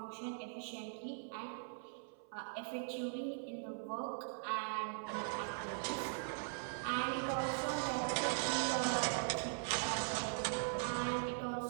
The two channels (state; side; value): silent; left; 50 dB below the other